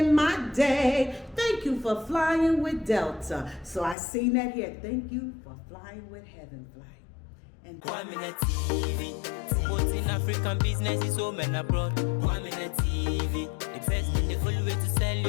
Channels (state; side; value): drops out; right; at 4.0 s